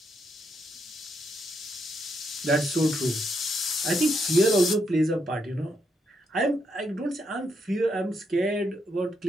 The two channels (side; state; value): both; normal; correlation 0.78